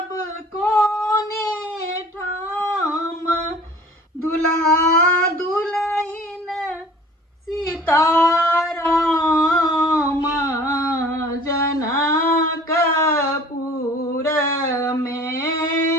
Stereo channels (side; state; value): both; normal; correlation 0.48